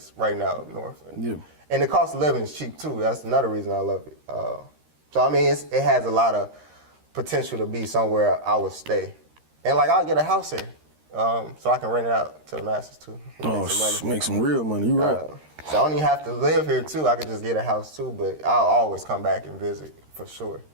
right now up north. And the cost of living is cheap, too. That's another reason I love it. So, I mean, it has a lot of potential to be somewhere I would stay. And like I'll get a house here, so I can rent it out to the masses too. Make some real money. You right. So I don't even have to live here too. I could just get a house too. But I'll always come back and visit for sure.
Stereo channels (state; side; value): late; left; 13 ms